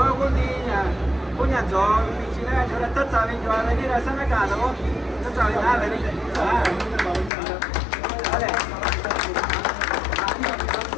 algún día, puña yo, mi china, yo la taza, ven, yo a venir a San Acá, ¿no? No sabe nada, ven. Vale.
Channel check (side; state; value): right; drops out; at 7.3 s